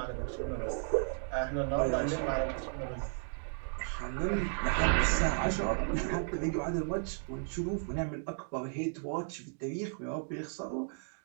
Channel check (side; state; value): left; silent; 55 dB below the other